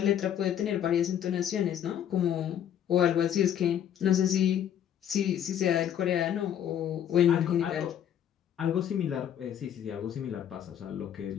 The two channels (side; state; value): right; quieter; 9.9 dB